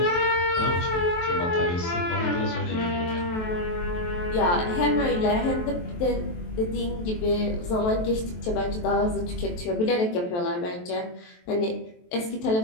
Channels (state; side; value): late; right; 23 ms